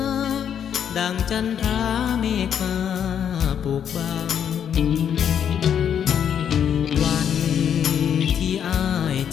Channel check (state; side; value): quieter; right; 8.6 dB